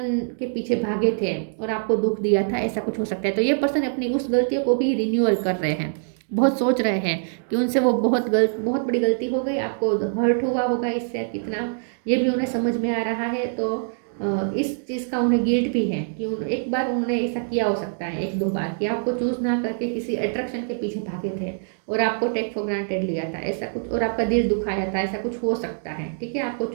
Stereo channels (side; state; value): left; silent; digital silence